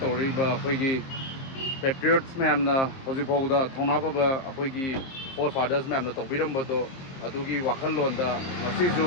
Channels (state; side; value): late; right; 23 ms